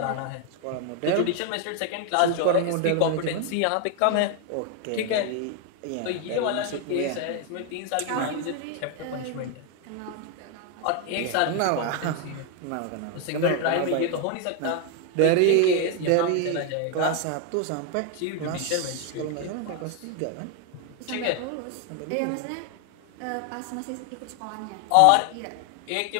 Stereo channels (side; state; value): both; different; correlation 0.01